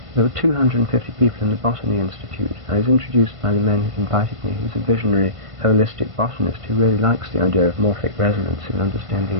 were 250 people in the Botany Institute. I was introduced by the man who invited me, who's a visionary, holistic botanist who really likes the idea of morphic resonance in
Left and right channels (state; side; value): late; left; 1.5 ms